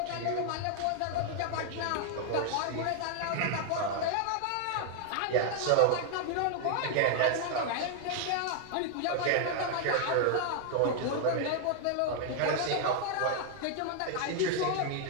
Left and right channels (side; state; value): both; different; correlation 0.00